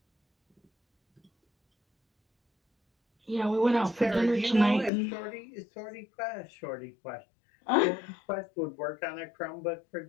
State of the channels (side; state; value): right; drops out; at 4.9 s